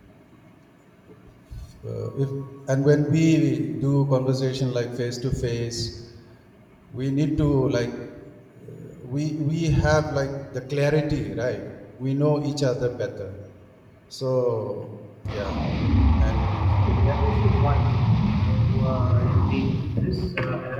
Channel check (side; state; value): both; identical; correlation 1.00